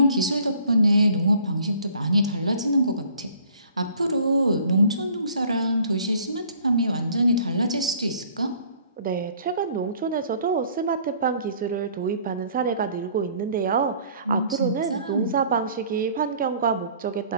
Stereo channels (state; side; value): inverted; both; correlation -0.55